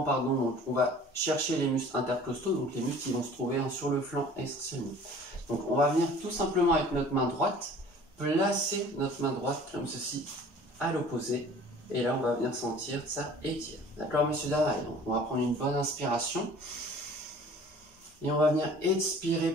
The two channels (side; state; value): both; normal; correlation 0.48